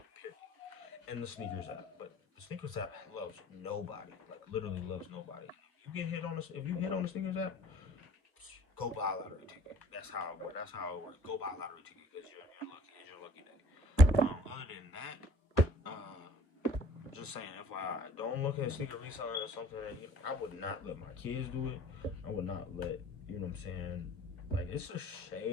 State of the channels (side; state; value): right; late; 1.3 ms